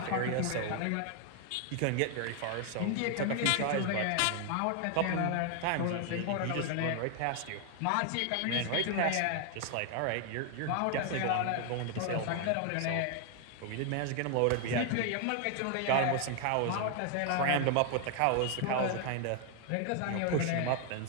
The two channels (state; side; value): different; both; correlation 0.00